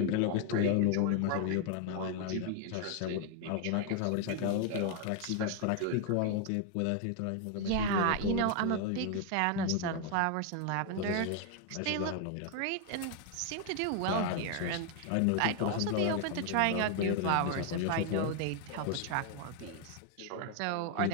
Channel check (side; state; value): both; different; correlation 0.01